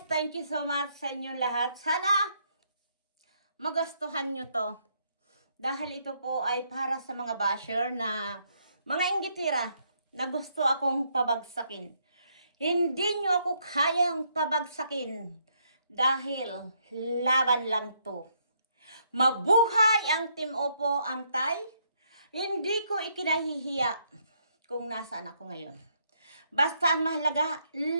thank you so much sa inyong lahat. Sana magustuhan nyo to. Dahil ito po ay para sa mga basher na mga inggitira na gusto akong pabagsakin. Hindi nyo ako kayang pabagsakin dahil laban lang to. Mabuhay ang Team Oppo Antay. Hindi ko ikinahihiya kung nasaan ako ngayon. Basta ang mahalaga,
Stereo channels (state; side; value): inverted; both; correlation -0.72